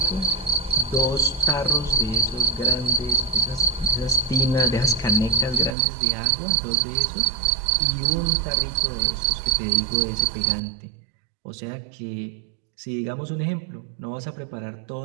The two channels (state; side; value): drops out; left; at 5.8 s